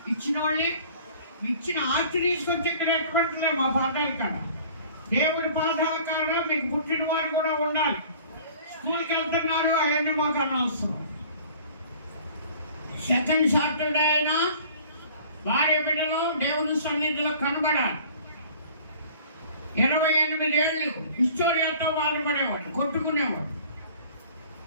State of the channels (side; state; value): both; inverted; correlation -0.49